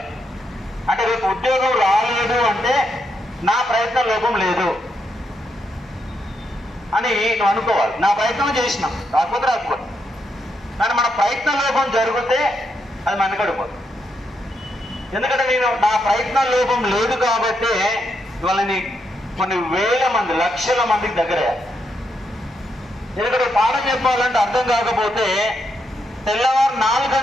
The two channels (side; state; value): both; normal; correlation 0.80